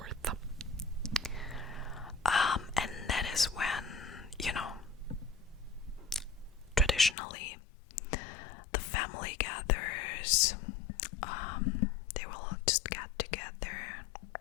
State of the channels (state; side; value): drops out; right; at 7.2 s